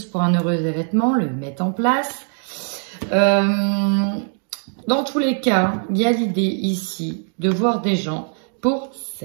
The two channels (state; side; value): silent; left; 55 dB below the other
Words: pour un heureux événement, le mettre en place. Dans tous les cas, il y a l'idée ici de voir des gens pour